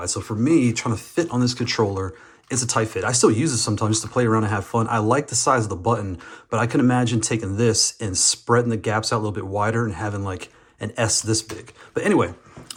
So for me, trying to fit on this controller, it's a tight fit. I still use it sometimes just to play around and have fun. I like the size of the button, but I can imagine taking this and spreading the gaps out a little bit wider and having like an S this big. But anyway,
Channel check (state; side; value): identical; both; correlation 1.00